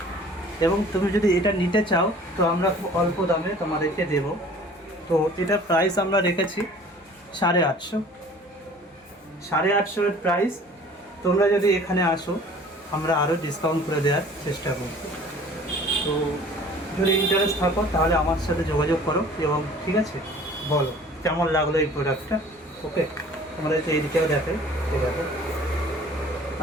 এবং তুমি যদি এটা নিতে চাও তো আমরা খুব অল্প দামে তোমাদেরকে দেব। তো এটার প্রাইস আমরা রেখেছি 850। 850 এর প্রাইস। তোমরা যদি এখানে আসো, আমরা আরও ডিসকাউন্ট করে দেওয়ার চেষ্টা করব। তো যদি ইন্টারেস্ট থাকো তাহলে আমার সাথে যোগাযোগ করো। এবং ঠিক আছে, বলো কেমন লাগলো এই প্রোডাক্টটা। ওকে, আমাদেরকে এই দিকেও দেখে, ঠিক আছে।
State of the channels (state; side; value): normal; both; correlation 0.49